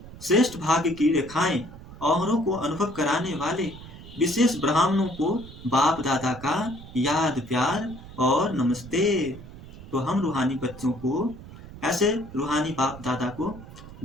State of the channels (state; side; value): noise; right; rumble, 16 dB below the sound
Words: श्रेष्ठ भाग्य की रेखाएं औरों को अनुभव कराने वाले विशेष ब्राह्मणों को बाप दादा का याद प्यार और नमस्ते। तो हम रूहानी बच्चों को, ऐसे रूहानी बाप दादा को